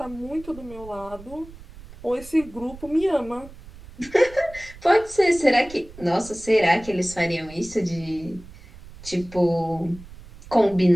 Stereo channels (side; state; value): right; noise; rumble, 18 dB below the sound